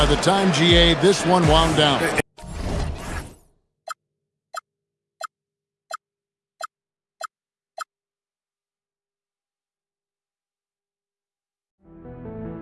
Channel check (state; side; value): identical; both; correlation 1.00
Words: the time GA this one wound down.